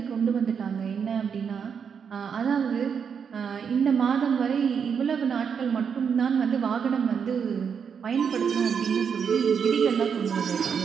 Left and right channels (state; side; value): quieter; left; 6.8 dB